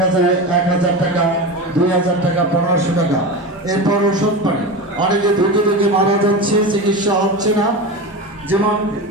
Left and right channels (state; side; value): normal; both; correlation 0.24